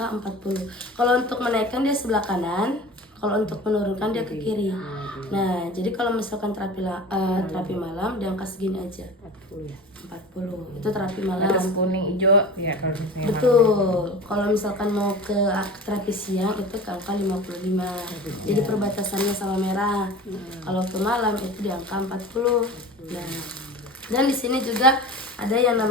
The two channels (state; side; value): normal; both; correlation 0.36